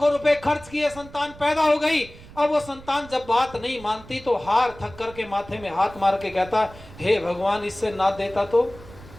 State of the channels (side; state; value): right; noise; rumble, 19 dB below the sound